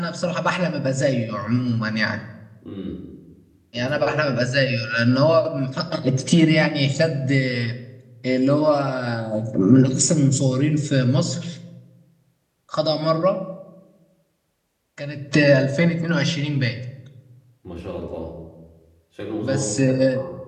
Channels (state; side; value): identical; both; correlation 1.00